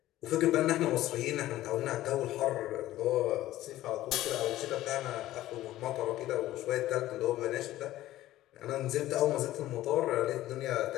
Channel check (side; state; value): right; quieter; 14.9 dB